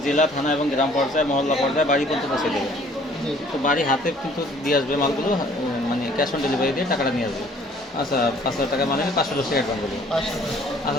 জেলা, থানা এবং গ্রাম পর্যায়ে, মহল্লা পর্যায়ে বাড়ি পর্যন্ত পৌঁছে দেবে। জি তো বাড়ি হাতে কিন্তু দিয়ে আসবে মালগুলো, মানে ক্যাশ অন ডেলিভারি দিয়ে টাকাটা নিয়ে আসবে। আচ্ছা, 5,000 টাকা মানে 500 টাকা অ্যাডভান্স দেবে। 500 টাকা।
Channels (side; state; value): both; normal; correlation 0.57